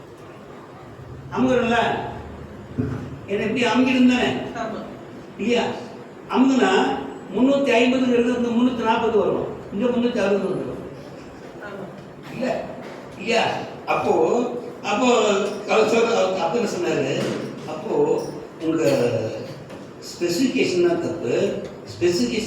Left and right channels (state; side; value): identical; both; correlation 1.00